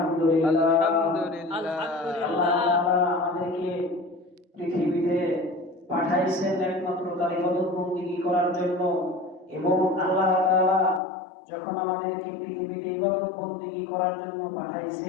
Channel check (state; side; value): drops out; right; at 11.0 s